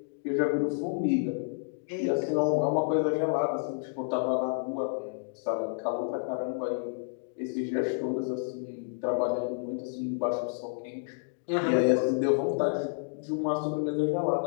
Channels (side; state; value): right; silent; digital silence